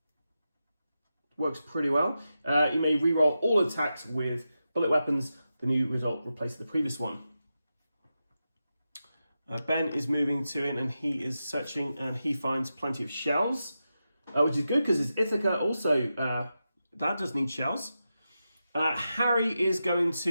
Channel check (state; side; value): inverted; both; correlation -0.90